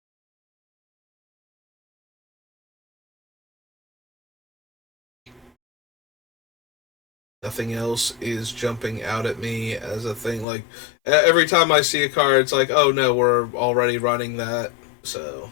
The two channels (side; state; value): right; drops out; at 10.5 s